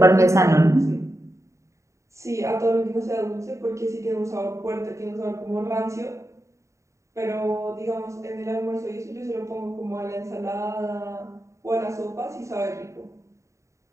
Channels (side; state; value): left; late; 0.14 ms